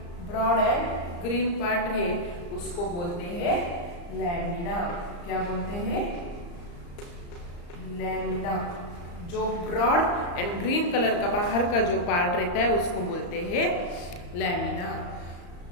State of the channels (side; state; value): right; late; 34 ms